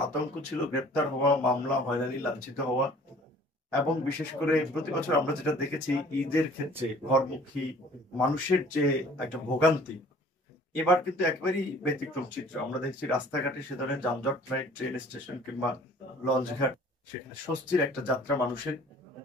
আতঙ্ক ছিল, গ্রেপ্তার হওয়া, মামলা, হয়রানি, লাঞ্ছিত হওয়া। এবং বিশেষ করে প্রতি বছর আমরা যেটা দেখেছি ঈদের ক্ষেত্রে ঘরমুখী মানুষের যে একটা ভোগান্তি, এবার কিন্তু একেবারেই ব্যতিক্রম চিত্র। আমরা দেখছি রাস্তাঘাটে সে ধরনের যানজট নাই, ট্রেন স্টেশন কিংবা লঞ্চ ঘাট, সেখানে স্বস্তির একটা যাত্রা মানুষের।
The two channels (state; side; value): normal; both; correlation 0.52